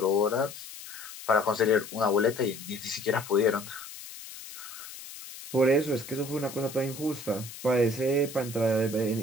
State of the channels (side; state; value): left; noise; hiss, 13 dB below the sound